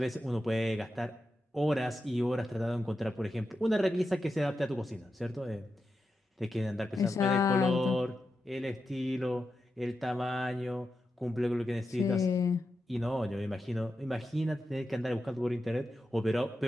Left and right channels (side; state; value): both; normal; correlation 0.89